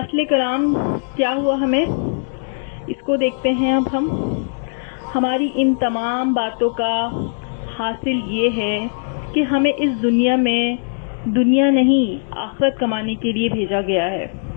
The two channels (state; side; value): silent; right; digital silence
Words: کلام کیا ہوا ہمیں، اس کو دیکھتے ہیں اب ہم۔ ہماری ان تمام باتوں کا حاصل یہ ہے کہ ہمیں اس دنیا میں دنیا نہیں آخرت کمانے کے لیے بھیجا گیا ہے۔